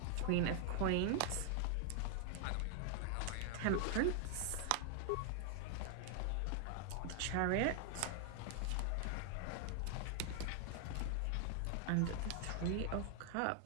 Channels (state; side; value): different; both; correlation 0.00